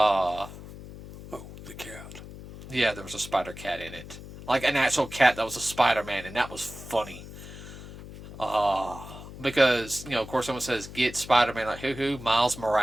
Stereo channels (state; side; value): noise; left; hum, 14 dB below the sound